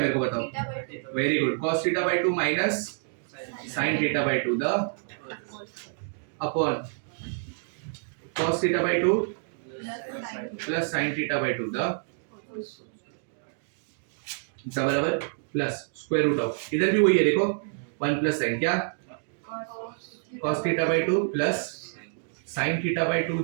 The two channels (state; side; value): silent; left; digital silence